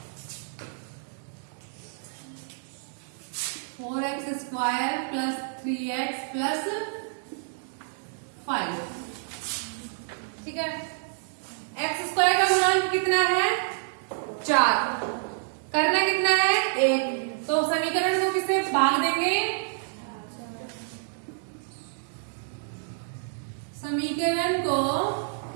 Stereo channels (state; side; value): silent; left; digital silence